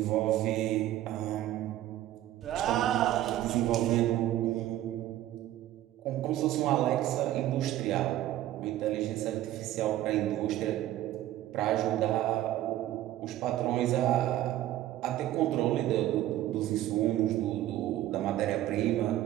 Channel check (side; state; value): left; quieter; 13.7 dB